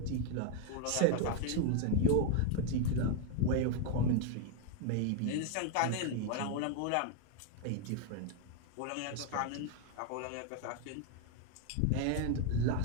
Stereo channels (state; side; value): different; both; correlation 0.01